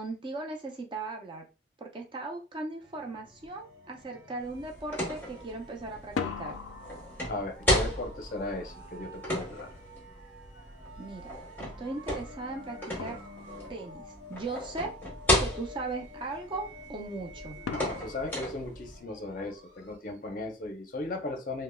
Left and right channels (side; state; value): both; normal; correlation 0.34